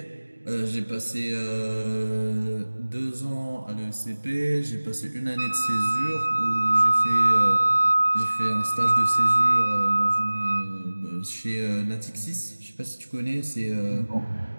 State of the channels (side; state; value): both; inverted; correlation -1.00